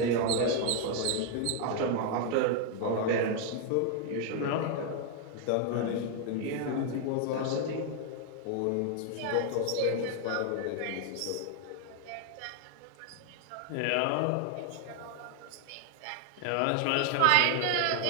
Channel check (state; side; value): different; both; correlation 0.00